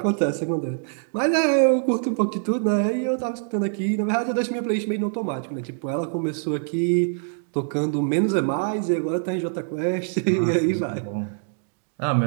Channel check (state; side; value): silent; left; digital silence